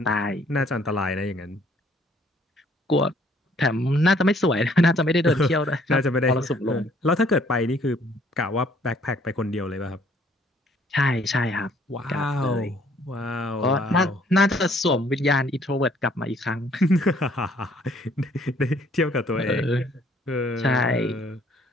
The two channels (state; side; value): normal; both; correlation 0.62